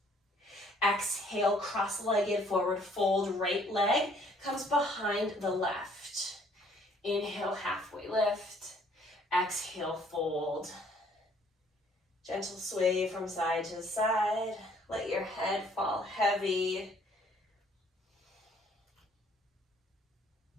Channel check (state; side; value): normal; both; correlation 0.61